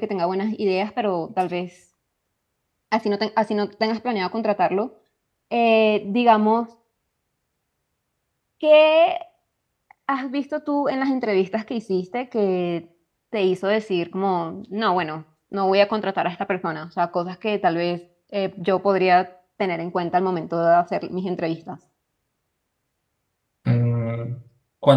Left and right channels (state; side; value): identical; both; correlation 1.00